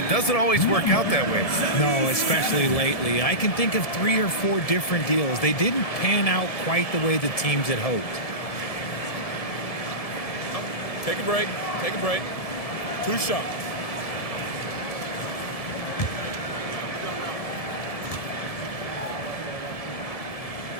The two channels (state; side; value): late; right; 1.7 ms